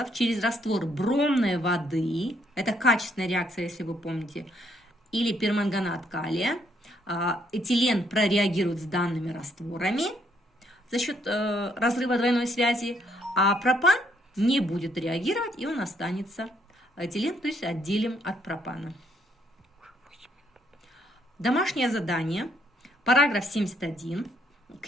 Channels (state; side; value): normal; both; correlation 0.71